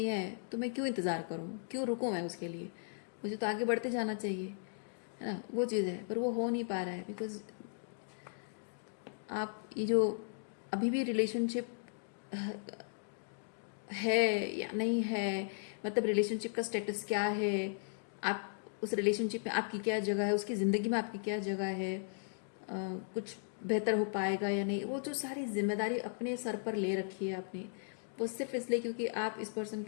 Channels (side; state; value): right; silent; digital silence